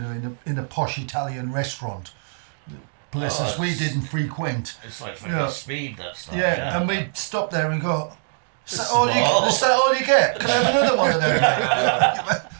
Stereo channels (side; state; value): left; silent; digital silence